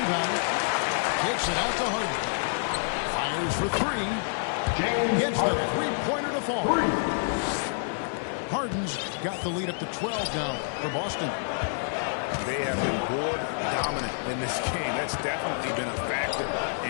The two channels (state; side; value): silent; right; digital silence